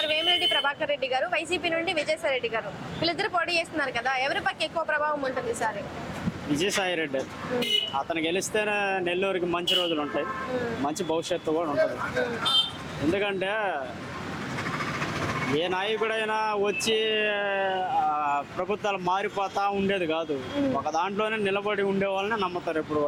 వేమిరెడ్డి ప్రభాకర్ రెడ్డి గారు, వైసీపీ నుండి విజయసాయి రెడ్డి గారు వీళ్ళిద్దరు పోటీ చేస్తున్నారు కదా, ఎవరి పక్క ఎక్కువ ప్రభావం ఉంటుంది సార్? విజయసాయి రెడ్డి. అతను గెలిస్తేనే నెల్లూరుకి మంచి రోజులు ఉంటాయి, మంచి భవిష్యత్తు కూడా ఉంటుంది. ఎందుకంటే ఏ నాయకుడైనా వచ్చి ప్రభుత్వాలు మారిపోతా ఉండేది కాదు. ఒక దాంట్లోనే నిలబడి ఉండే వాళ్ళని నమ్ముతారు ఎప్పుడు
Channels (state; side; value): identical; both; correlation 1.00